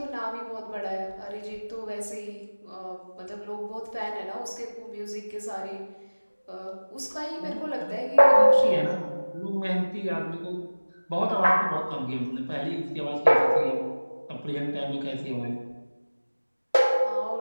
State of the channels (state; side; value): inverted; both; correlation -1.00